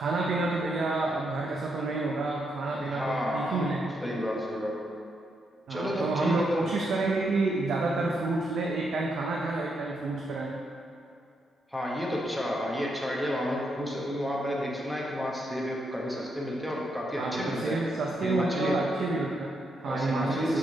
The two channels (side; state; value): both; normal; correlation 0.80